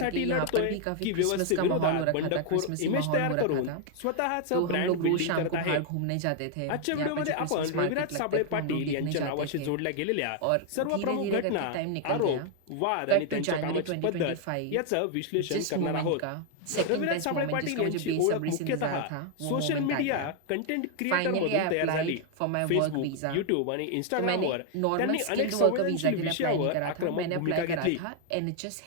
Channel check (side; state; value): both; different; correlation 0.00